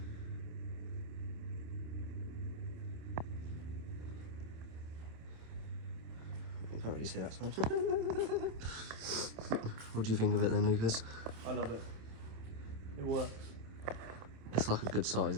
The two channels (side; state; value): left; late; 27 ms